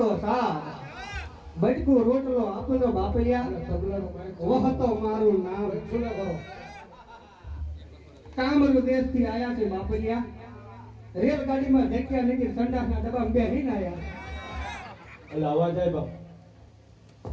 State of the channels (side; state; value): both; identical; correlation 1.00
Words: સાથ બટકું રોટલો આપનો બાપલિયા વહતો મારું નામ કામરૂ દેશથી આયા છે બાપલિયા રેલગાડીમાં ધક્યા નીકળી સંડાસના ડબ્બામાં બેહીને આયા એટલે અવાજ આવે બાપ